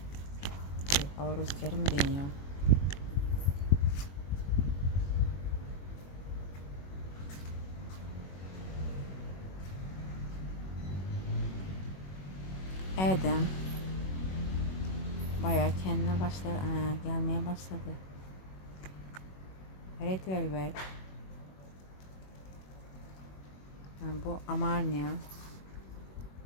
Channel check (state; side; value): late; right; 21 ms